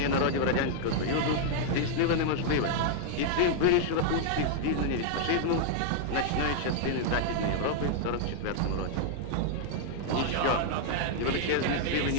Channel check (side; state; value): both; different; correlation -0.01